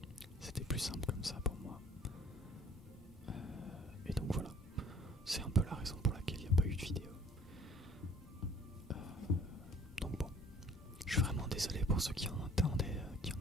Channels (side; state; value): both; normal; correlation 0.54